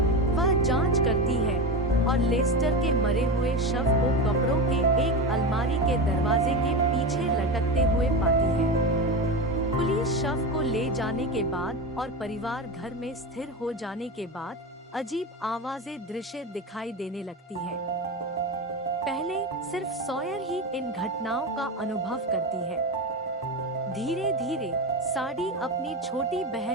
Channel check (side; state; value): both; normal; correlation 0.21